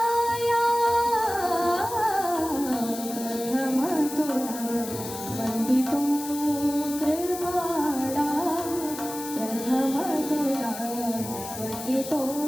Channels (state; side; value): noise; left; hiss, 10 dB below the sound